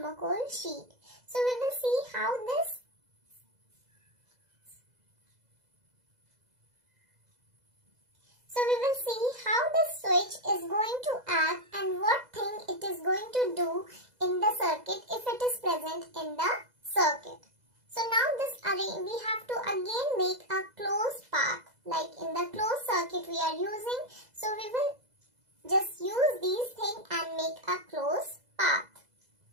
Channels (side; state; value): left; late; 2.0 ms